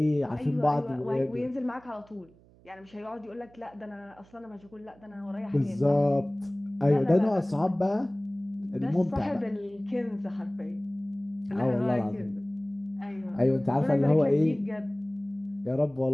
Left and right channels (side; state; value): right; noise; hum, 27 dB below the sound